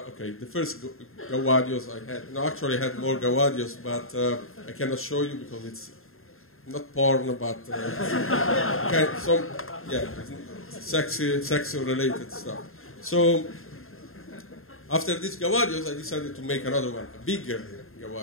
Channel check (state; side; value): late; right; 0.61 ms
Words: the first Gawadios I had. No, actually I had more Gawadios, but I cannot show you because it's not porn, but some, yeah, sexy related stuff. So after this Gawadios, I decided to make another one, a bigger